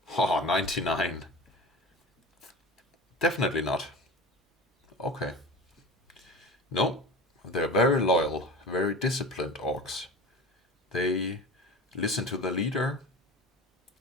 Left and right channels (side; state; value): both; normal; correlation 0.33